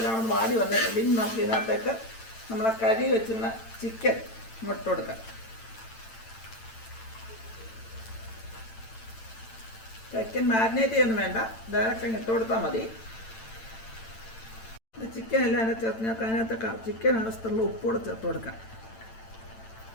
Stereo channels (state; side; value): late; right; 8.9 ms